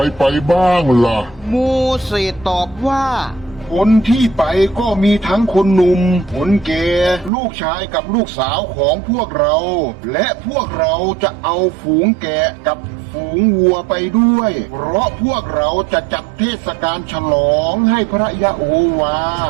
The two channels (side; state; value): left; drops out; at 7.3 s